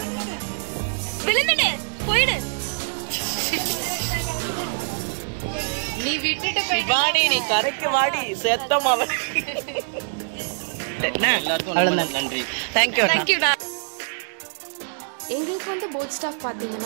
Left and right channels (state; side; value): silent; left; digital silence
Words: போயிடு நீ விட்டுட்டு வாடி, நீ கரைக்கு வாடி செத்தமா. எல்லாருக்கும் ரொம்ப நன்றி. தேங்க்யூடா. எங்களுக்கு வந்து போட் ஸ்டாஃப்